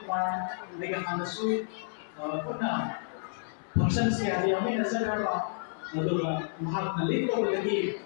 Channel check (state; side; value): silent; right; 56 dB below the other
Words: par, mereka lesu, pernah, function siapa yang ini nazar apa, kalau mahal nalik kalau lagi.